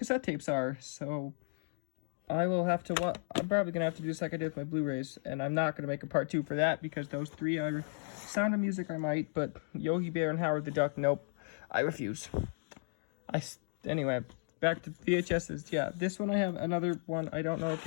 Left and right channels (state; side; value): silent; right; digital silence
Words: tapes are. So I will have to I'm probably gonna have to do this like I did with my Blu-rays, and I'm not gonna make a part 2 for that, because those 3 are Sound of Music. I might, but Yogi Bear and Howard the Duck, nope, I refuse. Anyway, back to VHSs. Yeah, this one I have another one. I don't know if